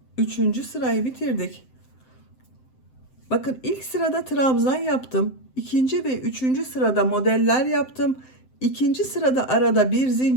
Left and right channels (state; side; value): late; right; 7.7 ms